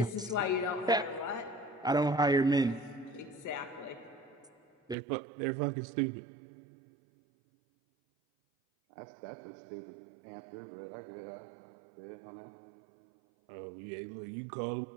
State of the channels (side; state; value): left; drops out; at 5.0 s